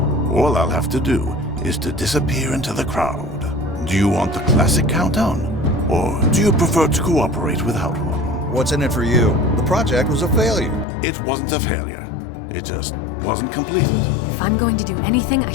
all I'll have to do is to disappear into the crowd. Do you want the classic countdown? Or do you prefer to cooperate without one? What's in it for you? The project was a failure. It wasn't a failure. It just wasn't completed. If I'm going to do anything, I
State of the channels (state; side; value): drops out; right; at 10.9 s